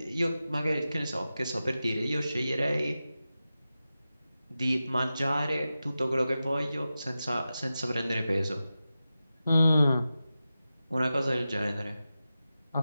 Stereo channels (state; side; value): inverted; both; correlation -0.93